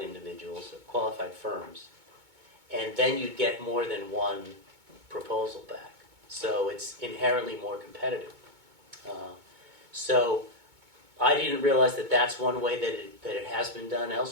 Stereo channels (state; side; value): late; left; 2.2 ms